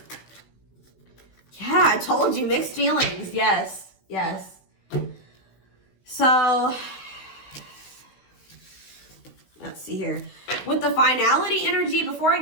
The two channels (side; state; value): right; late; 16 ms